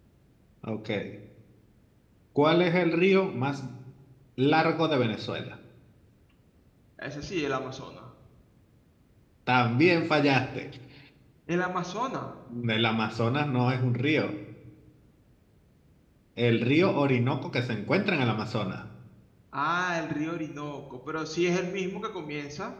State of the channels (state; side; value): identical; both; correlation 1.00